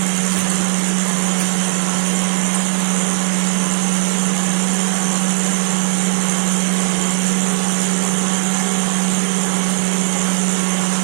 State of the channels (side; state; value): left; silent; 66 dB below the other